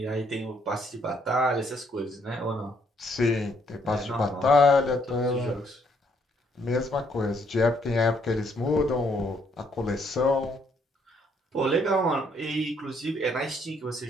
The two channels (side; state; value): both; normal; correlation 0.70